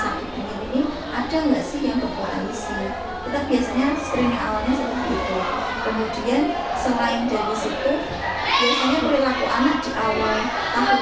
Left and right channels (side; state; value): both; identical; correlation 1.00